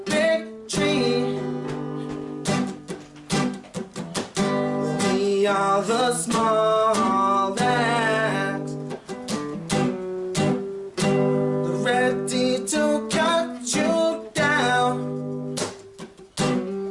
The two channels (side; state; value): both; identical; correlation 1.00